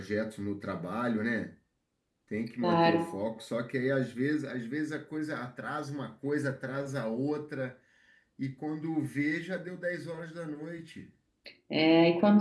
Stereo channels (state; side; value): identical; both; correlation 1.00